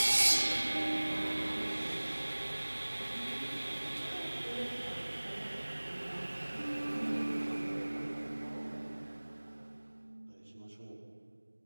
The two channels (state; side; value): inverted; both; correlation -1.00